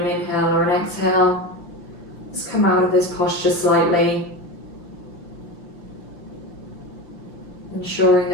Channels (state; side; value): late; right; 5.8 ms